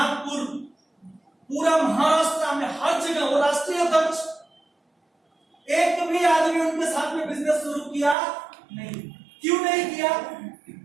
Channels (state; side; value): drops out; left; at 8.2 s